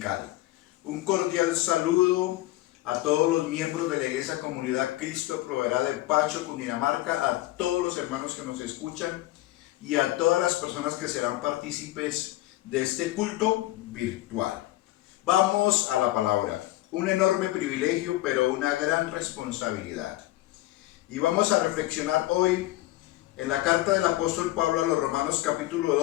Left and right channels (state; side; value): quieter; right; 17.0 dB